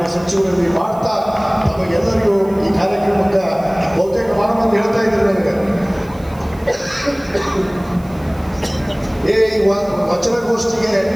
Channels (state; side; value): noise; right; hiss, 26 dB below the sound